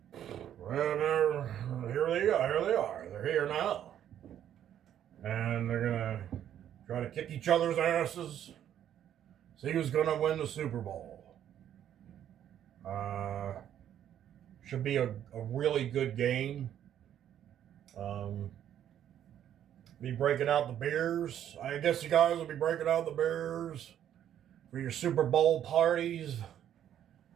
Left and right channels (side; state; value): left; quieter; 10.4 dB